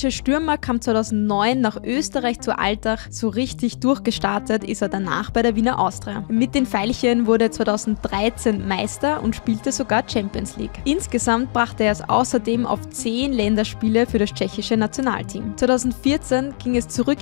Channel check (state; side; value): silent; right; digital silence